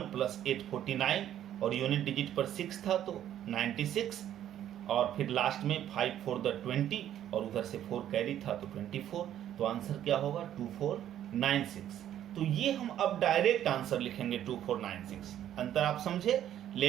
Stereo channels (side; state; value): left; quieter; 11.2 dB